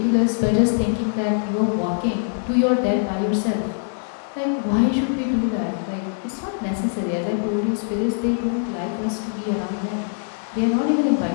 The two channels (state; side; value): silent; right; 60 dB below the other